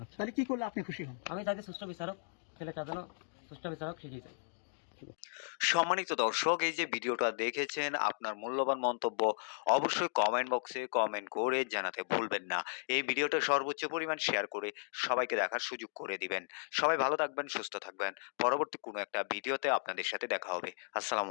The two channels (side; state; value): right; silent; digital silence